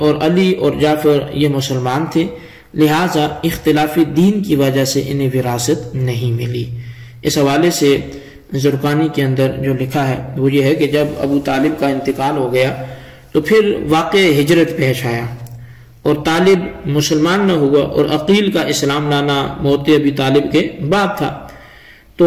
علی اور جعفر یہ مسلمان تھے، لہٰذا اختلاف دین کی وجہ سے انہیں وراثت نہیں ملی۔ اس حوالے سے زرقانی کے اندر جو لکھا ہے وہ یہ ہے کہ جب ابو طالب کا انتقال ہو گیا تو پھر واقع ہجرت پیش آیا، اور طالب مسلمان نہ ہوا، اور عقیل کا اسلام لانا موت ابی طالب کے بعد تھا۔ تو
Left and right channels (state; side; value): identical; both; correlation 1.00